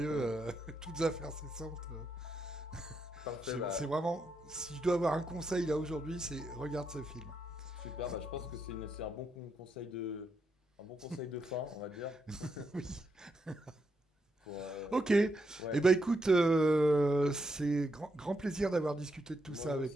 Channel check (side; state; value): both; normal; correlation 0.80